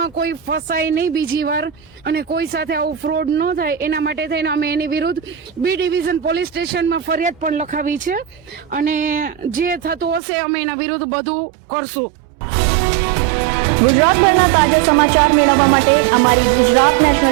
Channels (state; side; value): drops out; left; at 10.2 s